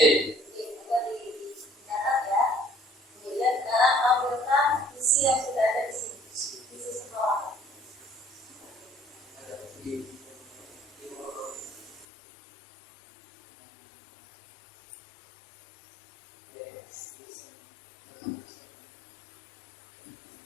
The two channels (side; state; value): right; drops out; at 12.1 s